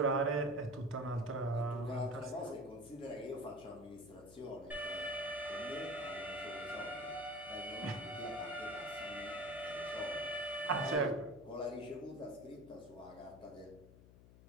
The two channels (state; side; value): noise; left; hum, 19 dB below the sound